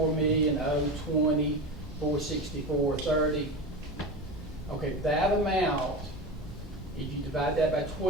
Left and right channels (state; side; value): normal; both; correlation 0.25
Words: 464.30. Okay, that amount, if you divide that by